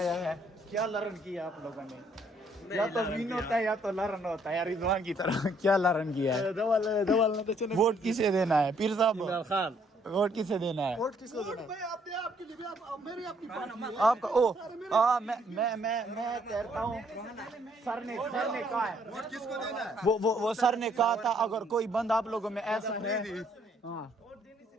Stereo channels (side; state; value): both; normal; correlation 0.67